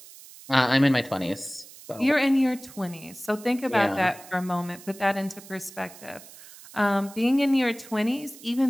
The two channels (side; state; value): right; noise; hiss, 19 dB below the sound